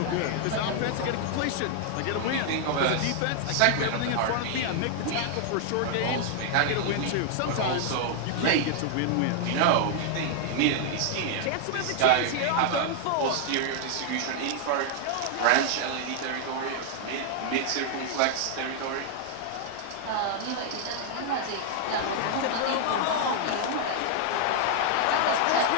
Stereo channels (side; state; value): both; different; correlation 0.00